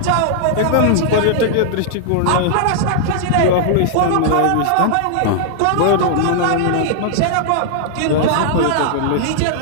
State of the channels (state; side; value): different; both; correlation -0.01